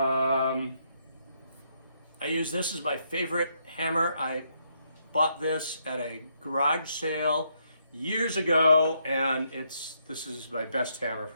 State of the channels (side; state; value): both; inverted; correlation -0.75